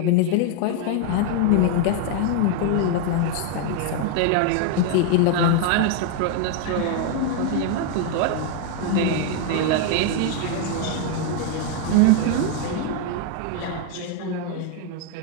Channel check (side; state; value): both; different; correlation 0.00